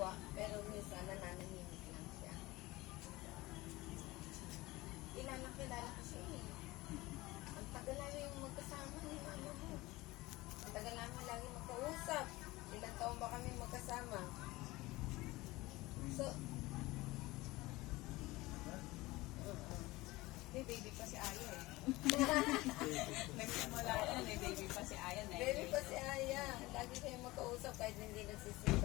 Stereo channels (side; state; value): right; quieter; 20.2 dB